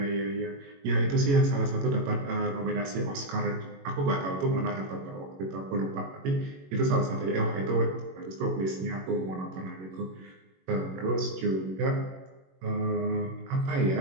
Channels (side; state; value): left; late; 21 ms